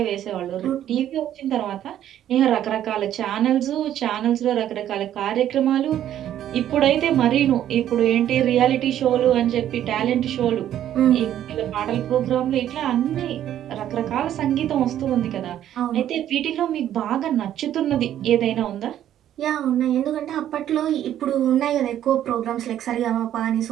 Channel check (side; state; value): left; quieter; 11.3 dB